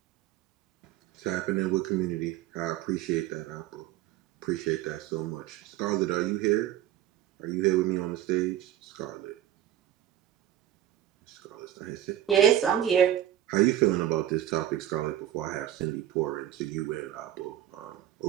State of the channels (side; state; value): left; quieter; 12.0 dB